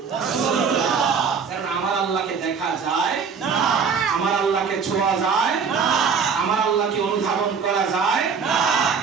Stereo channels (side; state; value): left; quieter; 5.9 dB